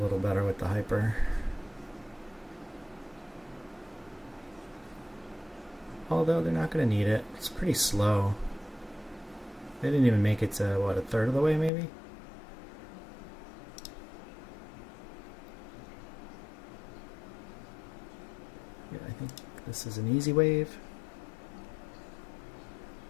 better with the hyper. Although they're not going to need it. It's pretty slow. They didn't even make it to, what, a third of the way maybe? Yeah, I think this is an easy wave.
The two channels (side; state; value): right; drops out; at 11.7 s